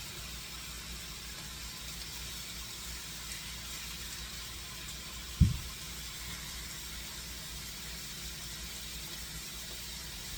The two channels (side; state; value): both; identical; correlation 1.00